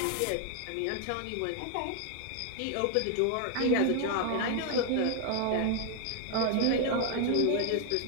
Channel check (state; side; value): different; both; correlation 0.01